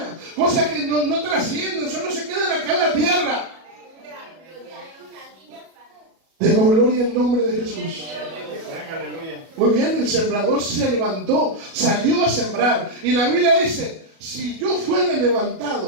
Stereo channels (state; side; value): late; left; 37 ms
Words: cosas que no trascienden, solo se quedan acá en la tierra. Demos gloria en nombre de Jesús. Muy bien, el sembrador se levantó, salió a sembrar. Y la Biblia dice, si yo fuera